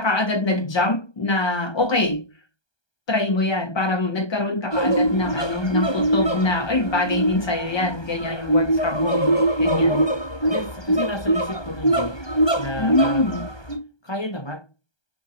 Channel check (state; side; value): late; right; 1.2 ms